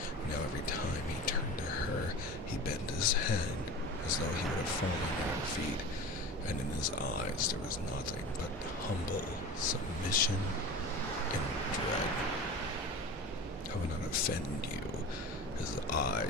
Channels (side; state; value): both; normal; correlation 0.34